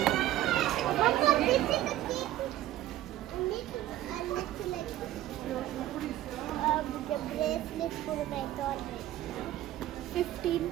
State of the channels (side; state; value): left; quieter; 14.0 dB